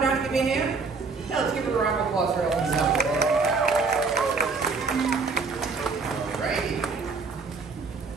down and give me a hand? Yeah, let's give her a round of applause for helping us out today. Alrighty.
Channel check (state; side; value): quieter; left; 4.5 dB